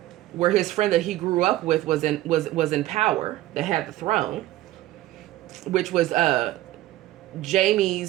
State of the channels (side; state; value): left; quieter; 15.7 dB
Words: where his friend that he grew up with was in power, that had the throne, which was